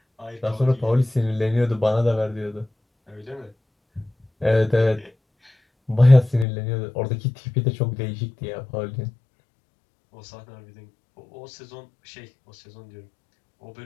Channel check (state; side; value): drops out; right; at 6.5 s